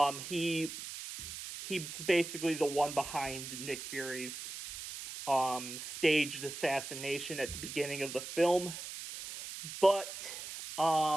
He's basically the one behind Nick Fury's staged assassination at the beginning of the film. But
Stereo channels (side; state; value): right; noise; hiss, 9 dB below the sound